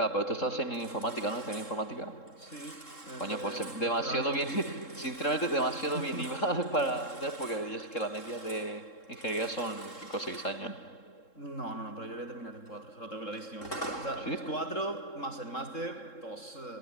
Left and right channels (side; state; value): right; late; 3.7 ms